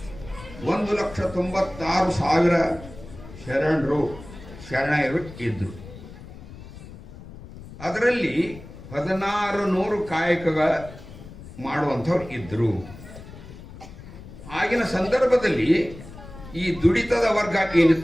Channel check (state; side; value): noise; left; rumble, 16 dB below the sound